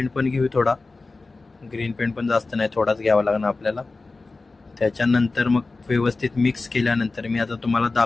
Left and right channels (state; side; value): quieter; right; 3.6 dB